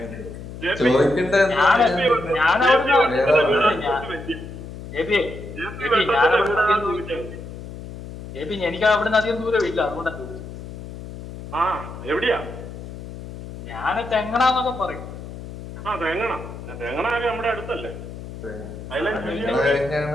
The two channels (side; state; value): left; noise; hum, 12 dB below the sound